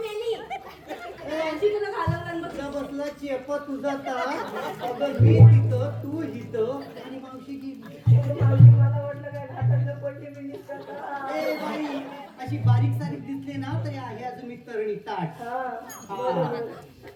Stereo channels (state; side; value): identical; both; correlation 1.00